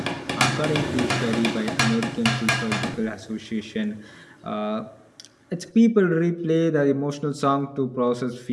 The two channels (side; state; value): both; identical; correlation 1.00